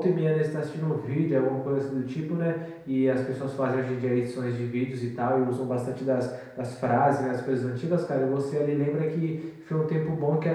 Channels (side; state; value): both; identical; correlation 1.00